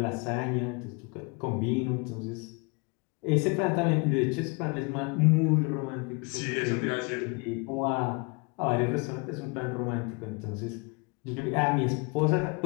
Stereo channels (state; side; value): quieter; right; 31.1 dB